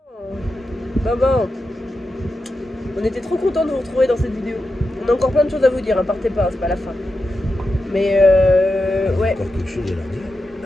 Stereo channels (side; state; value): both; normal; correlation 0.89